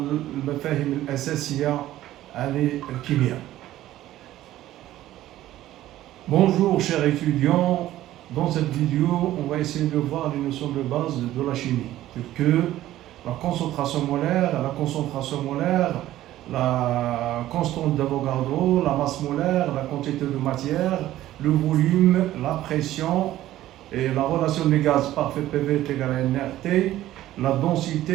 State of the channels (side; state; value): left; quieter; 14.3 dB